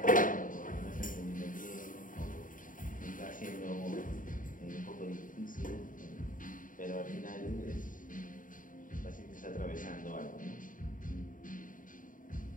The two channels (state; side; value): late; right; 0.39 ms